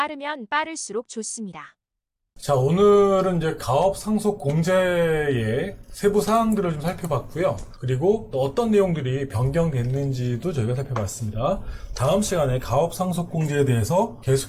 빠를수록 좋습니다. 자, 오늘은 이제 가업 상속 공제의 세부 사항들을 좀 살펴봤고요. 그리고 또 어떤 내용들이 변경됐는지도 저희가 살펴봤습니다. 다음 시간에 가업 상속 공제에 대해서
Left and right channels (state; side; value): identical; both; correlation 1.00